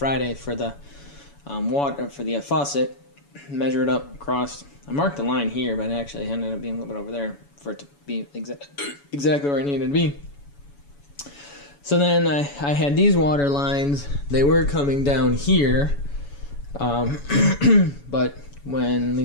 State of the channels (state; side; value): late; right; 7.1 ms